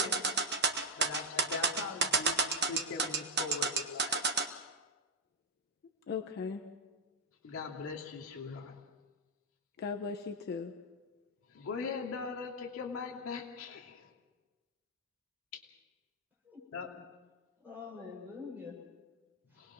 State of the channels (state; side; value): normal; both; correlation 0.01